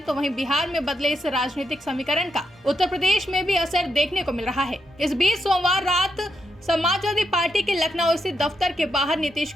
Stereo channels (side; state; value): both; normal; correlation 0.82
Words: तो वहीं बिहार में बदले इस राजनीतिक समीकरण का उत्तर प्रदेश में भी असर देखने को मिल रहा है। इस बीच सोमवार रात समाजवादी पार्टी के लखनऊ स्थित दफ्तर के बाहर नीतीश